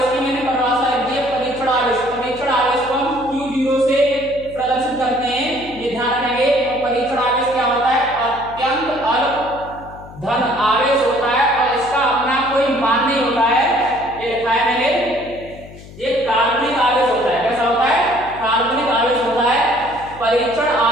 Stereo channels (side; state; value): left; noise; hum, 18 dB below the sound